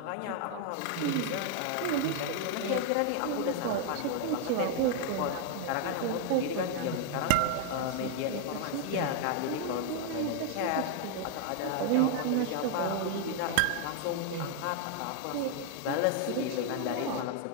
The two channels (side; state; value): both; different; correlation 0.00